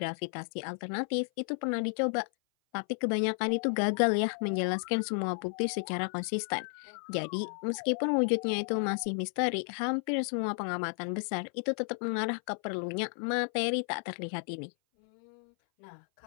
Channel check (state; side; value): silent; right; 56 dB below the other